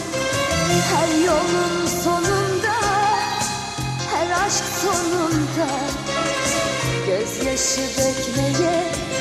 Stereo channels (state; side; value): identical; both; correlation 1.00